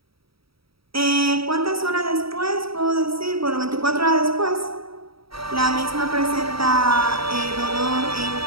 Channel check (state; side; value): late; left; 0.76 ms